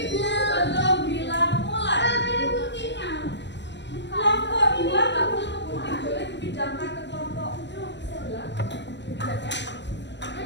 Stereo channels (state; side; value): late; right; 0.52 ms